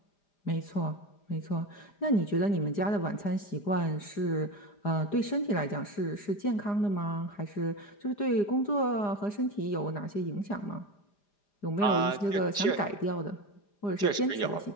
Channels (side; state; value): right; late; 4.8 ms